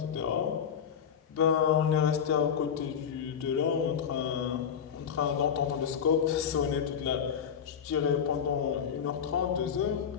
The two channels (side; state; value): right; quieter; 7.8 dB